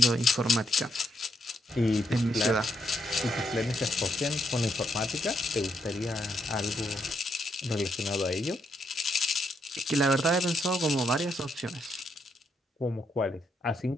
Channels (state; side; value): normal; both; correlation 0.78